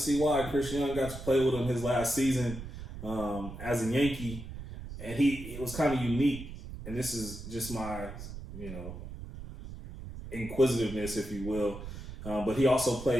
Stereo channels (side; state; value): right; noise; rumble, 11 dB below the sound